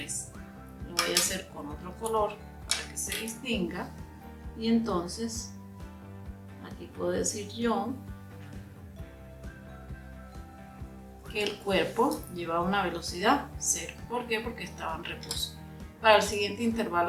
Lo voy a hacer con otro color para que se distinga. Y entonces aquí puedo decir yo que el cuerpo llevaba una velocidad 0. ¿Por qué? Porque estaba en reposo. Para el siguiente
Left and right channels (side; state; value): both; identical; correlation 1.00